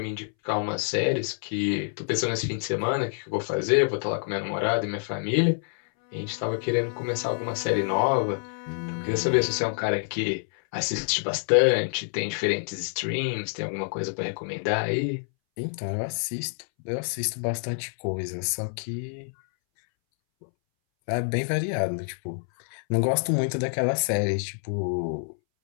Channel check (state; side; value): silent; right; 60 dB below the other